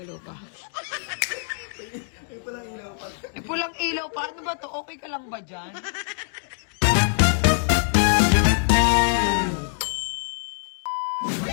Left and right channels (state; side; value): silent; right; 62 dB below the other